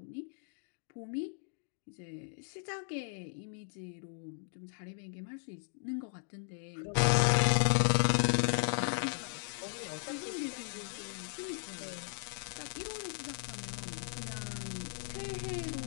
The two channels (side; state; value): right; silent; 53 dB below the other